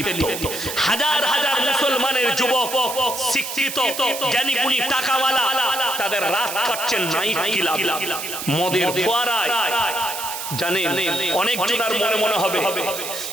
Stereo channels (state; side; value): noise; right; hiss, 6 dB below the sound